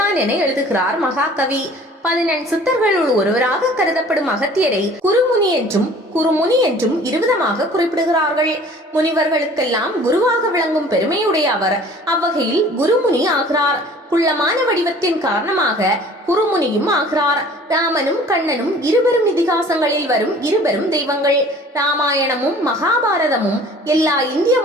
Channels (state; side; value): normal; both; correlation 0.49